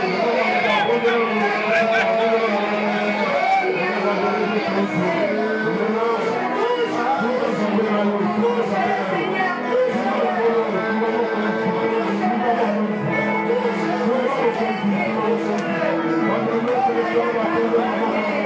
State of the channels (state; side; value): identical; both; correlation 1.00